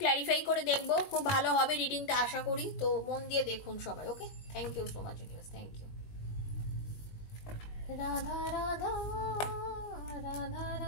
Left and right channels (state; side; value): late; right; 19 ms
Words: ক্ল্যারিফাই করে দেখবো, খুব ভালো হবে রিডিংটা আশা করি, তো মন দিয়ে দেখুন সবাই। Okay, thank you so much universe, thank you. Radha Radha Radha